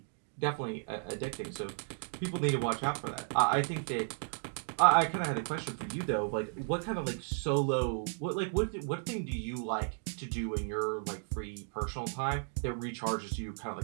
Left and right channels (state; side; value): silent; left; 55 dB below the other